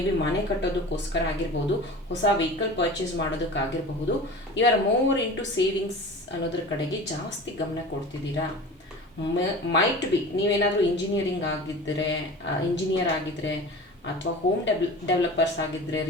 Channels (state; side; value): normal; both; correlation 0.36